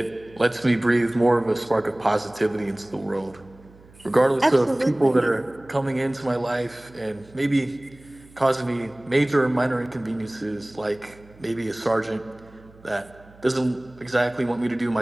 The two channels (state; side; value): noise; right; hum, 25 dB below the sound